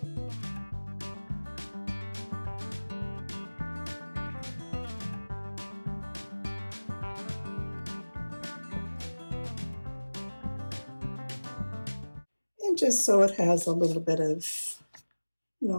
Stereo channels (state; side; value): inverted; both; correlation -1.00